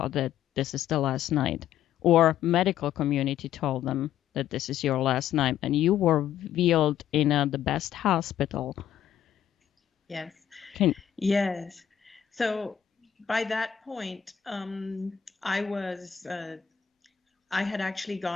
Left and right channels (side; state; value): right; quieter; 9.7 dB